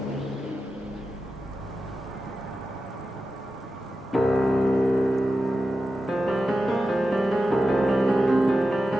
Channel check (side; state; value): both; normal; correlation 0.91